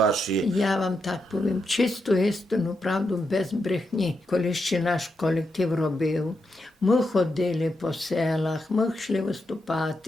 Я вам так повім, чисту істину, правду, без брехні. Коли ще наш колектив робив, ми ходили по селах, ми йшли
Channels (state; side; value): normal; both; correlation 0.84